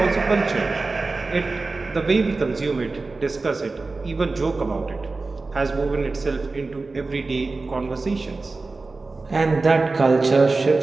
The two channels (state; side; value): quieter; left; 3.7 dB